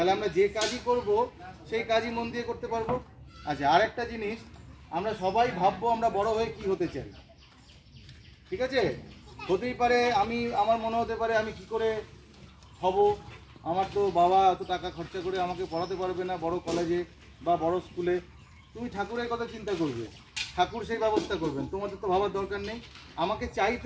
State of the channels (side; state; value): both; identical; correlation 1.00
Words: আমরা যে কাজই করব সেই কাজই মন দিয়ে করতে পারবো। আচ্ছা, আরেকটা জিনিস, আমরা সবাই ভাববো আমরা বড় হয়ে কি হতে চাই। ঠিক আছে? হতেই পারে আমার মনে হতে পারে আমি কি করে হব, আমার তো বাবা এত টাকা খরচা করে আমাকে পড়াতে পারবে না বড় কলেজে বা বড় স্কুলে। তুমি ঠাকুরের কথা চিন্তা করবে, ঠাকুর সেই ব্যবস্থা করবেন, তোমাদের তো ভাবার দরকার নেই। আমাকে চাইতে